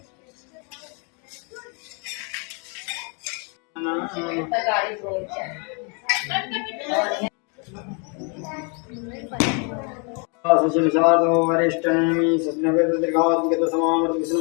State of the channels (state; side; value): quieter; right; 35.7 dB